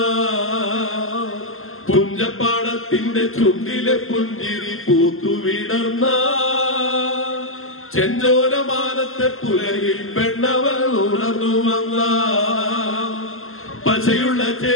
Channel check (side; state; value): right; late; 0.61 ms